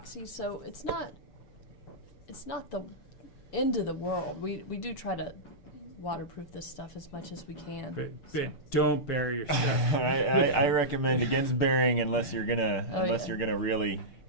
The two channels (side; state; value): right; late; 6.8 ms